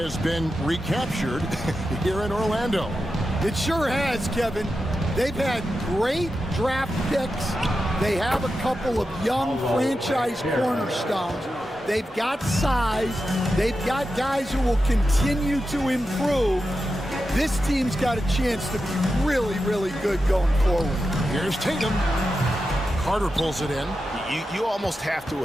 been recaptured here in Orlando. It sure has, Kevin. They've had great draft picks. They have a couple of young franchise cornerstones. They've got size. They've got guys who will continue to improve. This team's got a chance to be really, really good going forward. Here's Tatum. Carter pulls it in. You almost have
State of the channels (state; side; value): normal; both; correlation 0.90